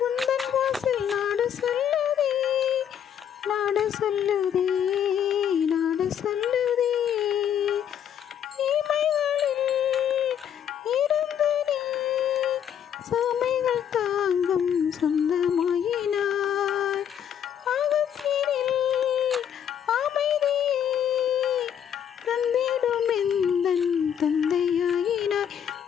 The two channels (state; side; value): quieter; right; 9.1 dB